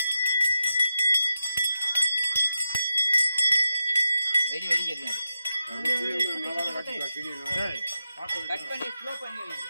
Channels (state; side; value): inverted; both; correlation -0.89